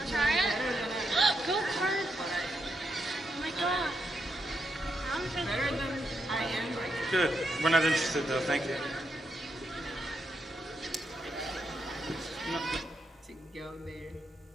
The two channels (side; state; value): both; normal; correlation 0.81